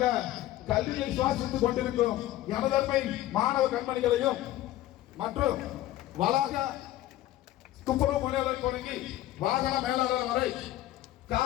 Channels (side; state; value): right; quieter; 14.8 dB